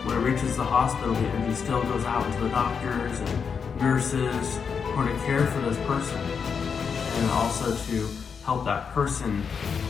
when it reaches the hospital, the energy still goes out to the doctors and nurses who are to care for this person, and also to help that person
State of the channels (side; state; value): right; quieter; 6.2 dB